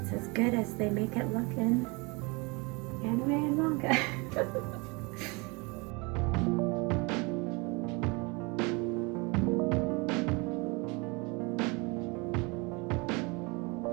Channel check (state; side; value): quieter; left; 28.2 dB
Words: as good as they make it look in anime and manga.